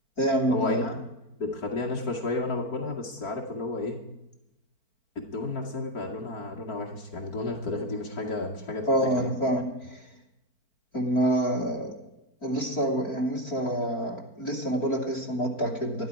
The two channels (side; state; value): right; late; 4.5 ms